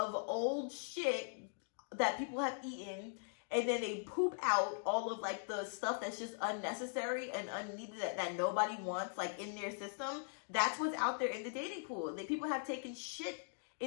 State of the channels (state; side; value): silent; right; digital silence